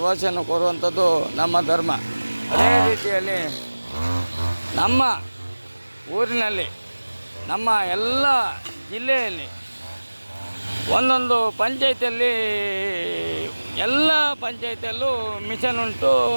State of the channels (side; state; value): both; inverted; correlation -1.00